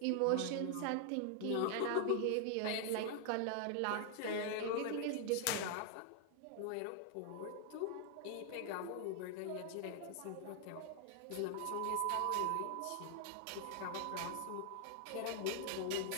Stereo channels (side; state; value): both; different; correlation 0.00